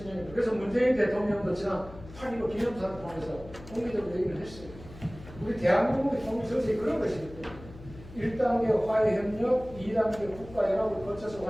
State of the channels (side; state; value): left; noise; hum, 17 dB below the sound